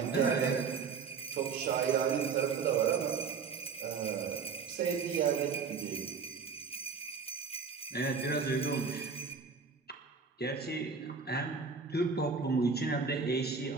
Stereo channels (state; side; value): quieter; left; 5.5 dB